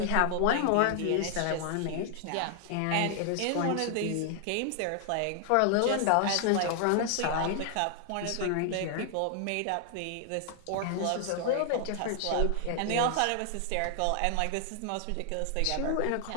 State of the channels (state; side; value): different; both; correlation 0.00